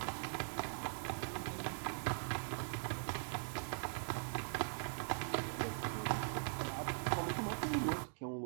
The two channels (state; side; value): silent; left; digital silence